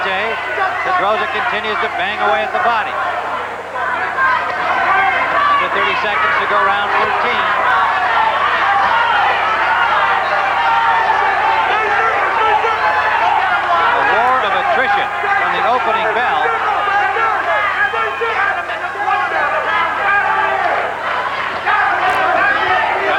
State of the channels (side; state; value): both; identical; correlation 1.00